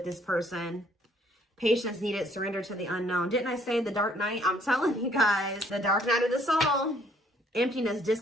this person. Patience needed, surrender to the unknown. Didn't I say the dark night? I'm telling you guys, the dark night of the soul. Emptiness,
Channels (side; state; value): both; normal; correlation 0.63